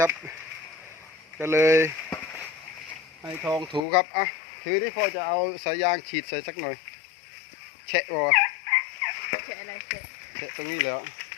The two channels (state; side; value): drops out; right; at 3.8 s